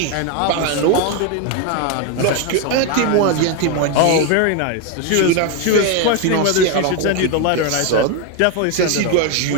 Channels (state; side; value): different; both; correlation 0.02